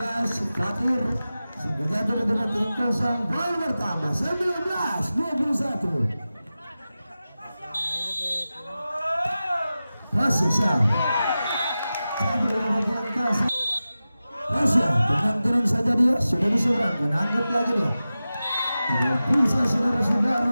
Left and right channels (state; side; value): inverted; both; correlation -0.94